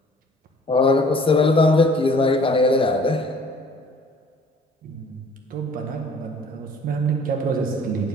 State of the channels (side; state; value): both; normal; correlation 0.54